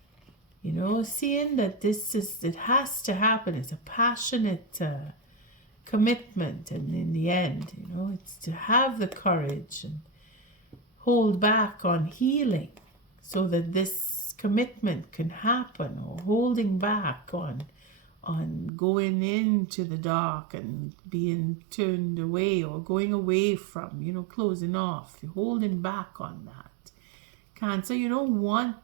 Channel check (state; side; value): drops out; left; at 18.7 s